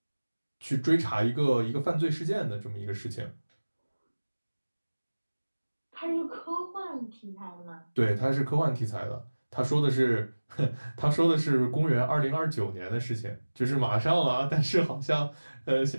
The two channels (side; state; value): both; inverted; correlation -1.00